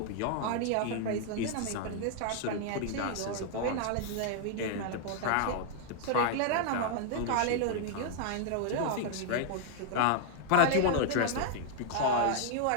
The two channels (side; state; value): both; different; correlation 0.00